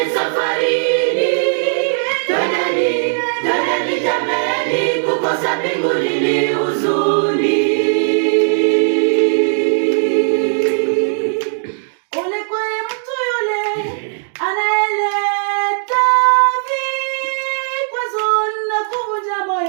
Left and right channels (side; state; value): left; silent; digital silence